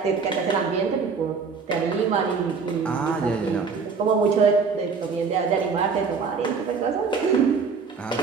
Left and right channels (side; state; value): left; quieter; 5.2 dB